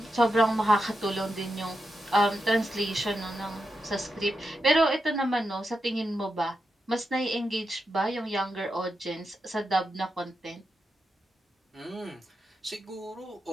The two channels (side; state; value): both; normal; correlation 0.87